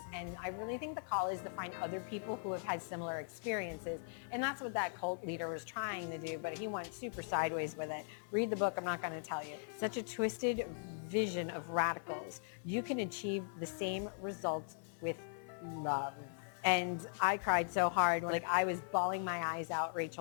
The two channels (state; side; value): silent; right; 51 dB below the other